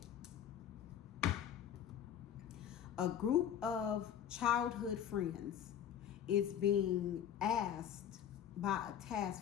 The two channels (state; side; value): quieter; right; 9.4 dB